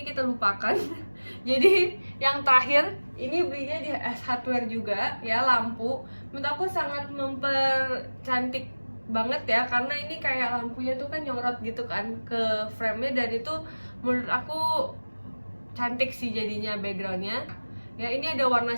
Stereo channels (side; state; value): both; inverted; correlation -1.00